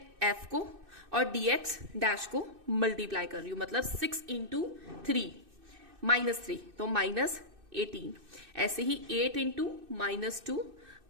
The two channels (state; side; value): late; left; 2.6 ms